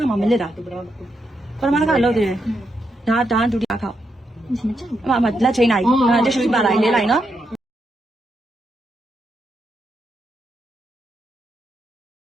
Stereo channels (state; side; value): normal; both; correlation 0.82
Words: ခါမှမလစ်တာပထမတစ်ခါလုပ်သေးတယ်ဒါဒုတိယခေါက် မကြောက် အမလက်ချိန်လိုက်တိရှူပါလိုက်လေးလိုက်နော်